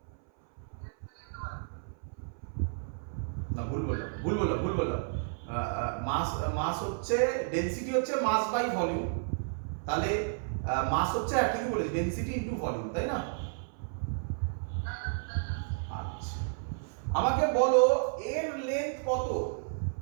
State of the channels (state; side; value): silent; left; 57 dB below the other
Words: না, ভুল বললাম। মাস হচ্ছে, ডেনসিটি হচ্ছে মাস বাই ভলিউম। তাহলে মাস হচ্ছে ঠিকই বলেছি, ডেনসিটি ইনটু ভলিউম, তাই না? আচ্ছা, আমাকে বলো এর লেন্থ কত?